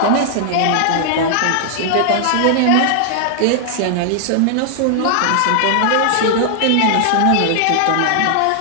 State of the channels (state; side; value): different; both; correlation 0.00